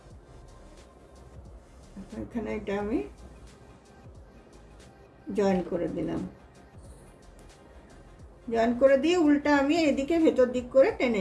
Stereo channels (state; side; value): identical; both; correlation 1.00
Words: এখানে এটা আমি জয়েন করে দিলাম, জয়েন করে দিয়ে উল্টা আমি এদিকে ভেতর দিক করে টেনে